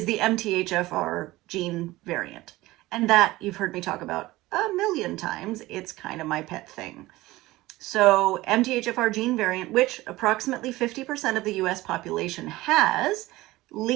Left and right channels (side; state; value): left; quieter; 18.5 dB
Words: the MTHFR gene variant. And that you've heard me talk about a million times. It's kind of my pet thing. So MTHFR gene variant, which approximately 50% of the US population has,